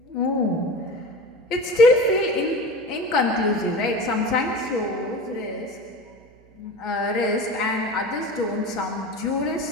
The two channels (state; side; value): noise; right; hum, 27 dB below the sound